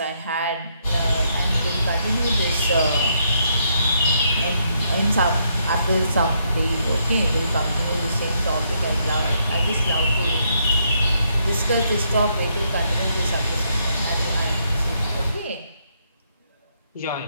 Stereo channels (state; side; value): inverted; both; correlation -0.75